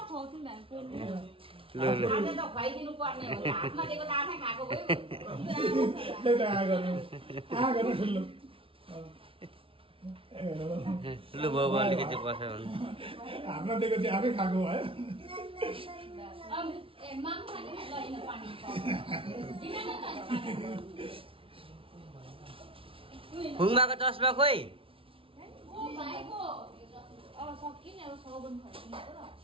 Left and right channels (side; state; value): left; late; 0.26 ms